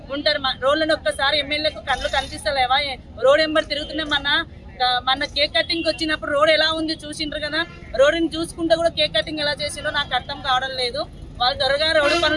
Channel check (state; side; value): identical; both; correlation 1.00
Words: ఉంటారు. రోడ్లను ఒక్కసారి ఎమ్మెల్యేకు కళ్ళు కనిపిస్తలేవా? రోడ్ ఎంబర్ తిరుగుతున్నాం. మన కేక్ కటింగ్ వచ్చినప్పుడు రోడ్ ఎలా ఉంది చూసిండ్రు కదా, రోడ్డుని చూసుకుంటే కూడా కేక్ కటింగ్ ఎలా చేసిందో నాకు అర్థం కావడం లేదు. వాళ్ళు త్వరగా రోడ్డు